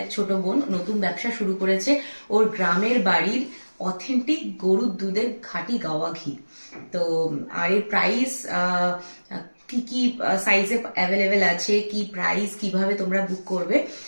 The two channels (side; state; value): both; inverted; correlation -1.00